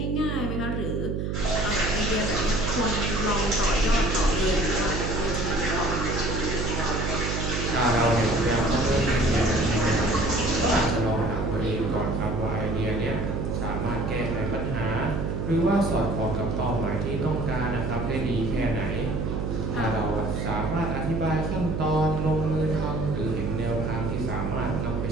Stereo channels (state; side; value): noise; right; hum, 1 dB below the sound